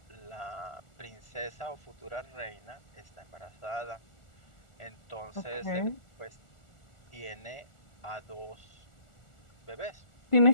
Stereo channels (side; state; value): right; late; 1.4 ms